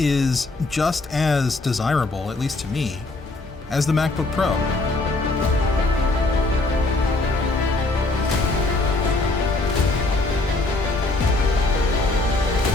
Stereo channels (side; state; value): right; quieter; 3.2 dB